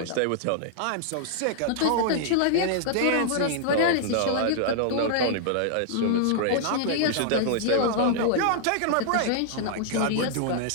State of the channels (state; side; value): different; both; correlation -0.01